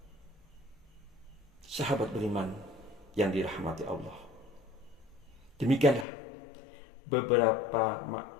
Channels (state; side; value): drops out; right; at 6.1 s